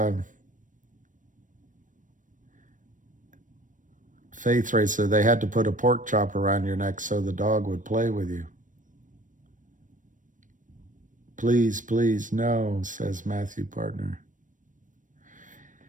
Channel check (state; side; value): late; left; 0.38 ms